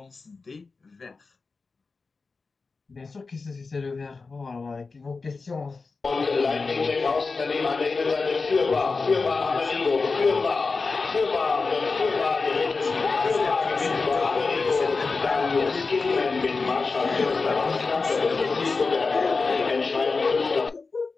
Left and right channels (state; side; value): quieter; right; 4.2 dB